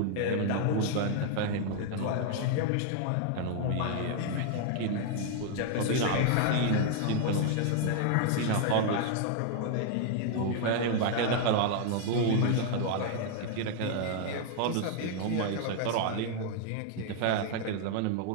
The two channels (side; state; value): both; different; correlation 0.00